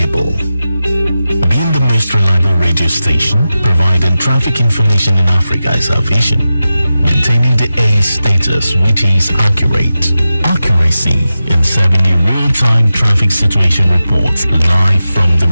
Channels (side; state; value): both; inverted; correlation -0.93